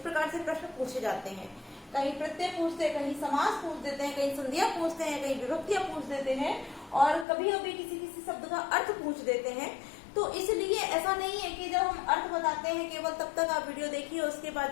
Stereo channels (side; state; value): right; drops out; at 7.2 s